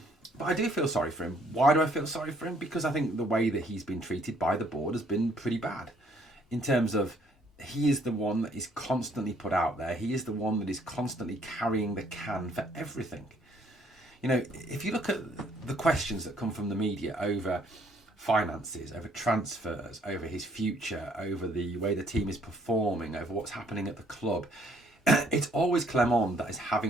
I do feel sorry for him. Why do I feel sorry for him? Because I think the way that he's been treated by the board has been pretty bad. In terms of, he is the one that is constantly put out there. He is the one that is constantly carrying the can for everything. You know, if you look at the questions that come from the media over finances, over transfers, over his future, over the way the team is performing, over what's happening at the club, it's always Clement that is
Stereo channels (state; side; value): normal; both; correlation 0.65